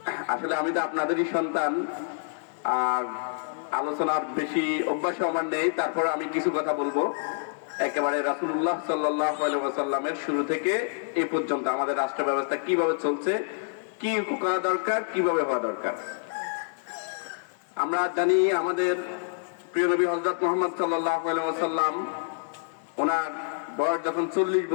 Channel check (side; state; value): right; silent; digital silence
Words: আসলে আমি তো আপনাদেরই সন্তান, আর আলোচনার বেশি অভ্যাস আমার নেই, তারপর আমি কিছু কথা বলবো। একেবারে রাসূলুল্লাহ সাল্লাল্লাহু আলাইহি ওয়াসাল্লামের শুরু থেকে এই পর্যন্ত আমাদের রাষ্ট্র ব্যবস্থা কিভাবে চলছে, কি করা দরকার, কিভাবে হওয়া দরকার। আমরা জানি আমাদের প্রিয় নবী হযরত মুহাম্মদ সাল্লাল্লাহু আলাইহি ওয়াসাল্লাম ওনার বয়স যখন 40